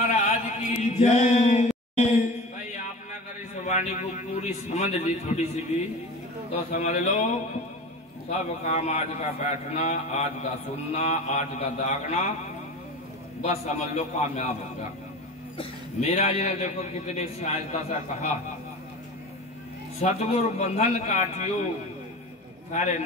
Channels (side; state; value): both; normal; correlation 0.33